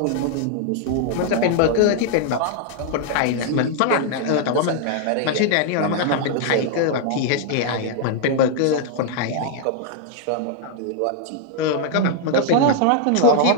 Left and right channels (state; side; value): different; both; correlation 0.00